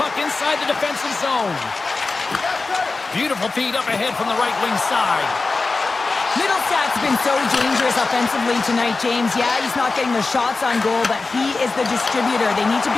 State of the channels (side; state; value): right; quieter; 3.8 dB